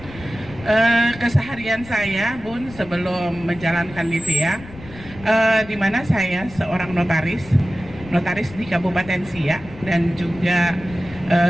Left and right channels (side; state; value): left; noise; rumble, 17 dB below the sound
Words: Keseharian saya, Bun, sebelum menjalankan Livia, di mana saya seorang notaris di Kabupaten Siak, dan juga